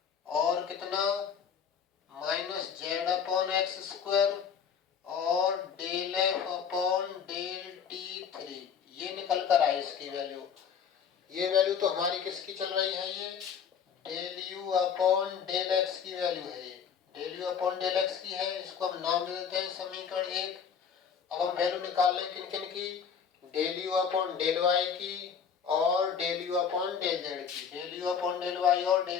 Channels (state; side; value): quieter; right; 7.1 dB